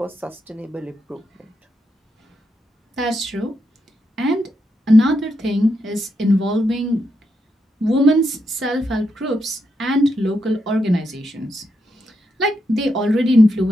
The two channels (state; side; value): normal; both; correlation 0.82